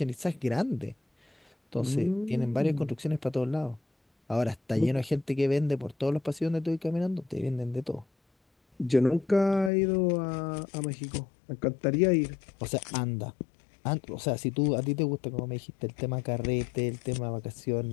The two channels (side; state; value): right; drops out; at 9.7 s